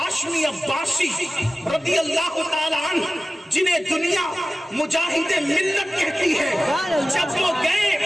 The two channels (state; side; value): normal; both; correlation 0.96